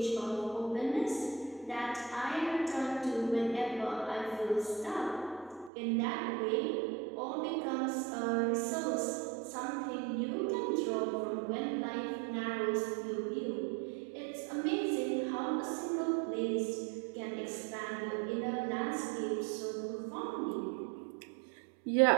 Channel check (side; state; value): left; drops out; at 5.7 s